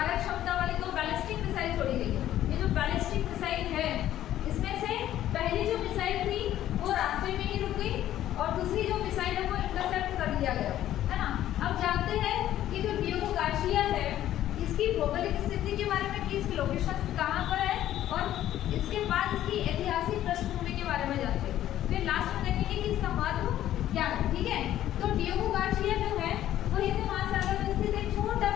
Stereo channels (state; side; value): quieter; right; 12.6 dB